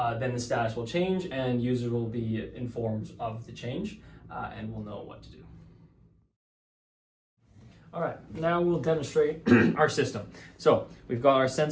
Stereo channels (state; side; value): identical; both; correlation 1.00